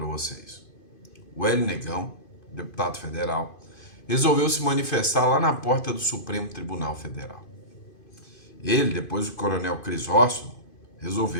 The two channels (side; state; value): right; late; 2.5 ms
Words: vocês? O Hélio Negão, deputado federal, resolveu se manifestar lá na porta do Supremo Tribunal Federal. Ele, depois do coronel Crisóstomo,